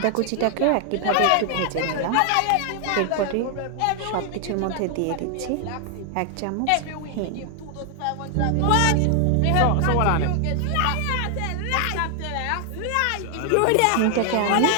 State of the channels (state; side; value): different; both; correlation 0.00